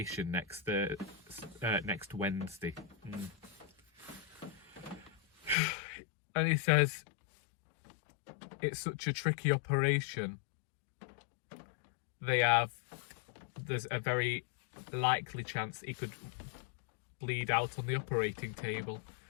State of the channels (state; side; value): drops out; right; at 5.6 s